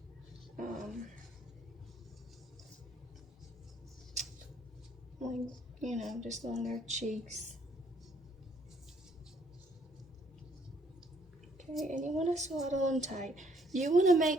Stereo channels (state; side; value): normal; both; correlation 0.66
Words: like, just on their cheeks. Okay, and you want to swaddle them tight. You want to